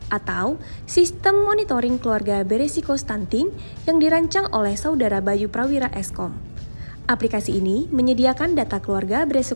atau Sistem Monitoring Keluarga Beresiko Stunting yang dirancang oleh Saudara Bayu Prawira Eskom. Aplikasi ini menyediakan data keluarga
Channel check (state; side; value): inverted; both; correlation -1.00